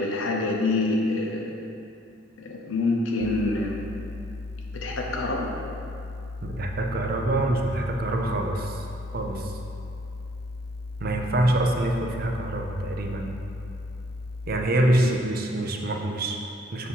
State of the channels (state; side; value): normal; both; correlation 0.62